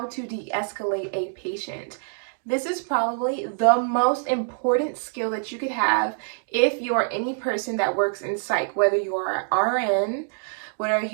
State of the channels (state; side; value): silent; left; digital silence